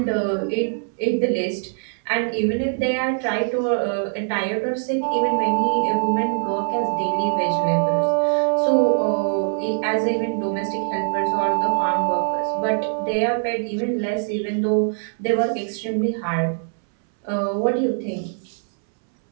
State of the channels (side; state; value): left; silent; 64 dB below the other